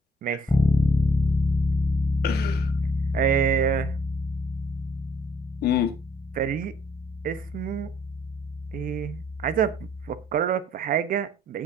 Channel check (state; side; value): normal; both; correlation 0.63